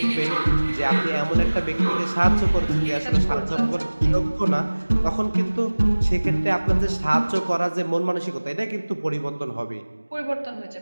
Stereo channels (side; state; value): both; inverted; correlation -1.00